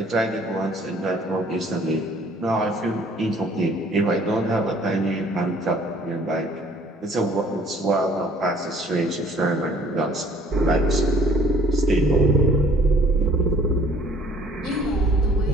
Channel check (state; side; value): normal; both; correlation 0.56